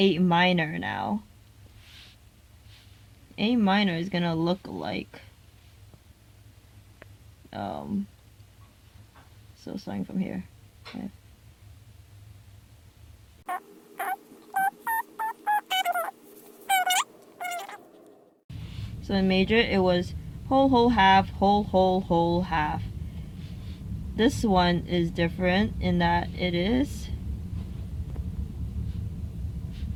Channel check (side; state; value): both; identical; correlation 1.00